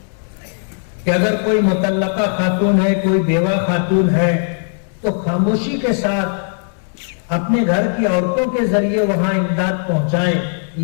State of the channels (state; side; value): silent; right; 65 dB below the other